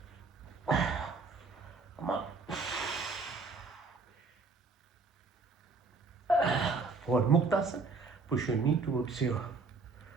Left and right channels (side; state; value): left; quieter; 4.1 dB